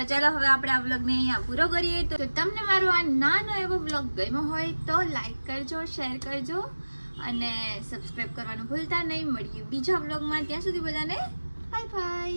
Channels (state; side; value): inverted; both; correlation -1.00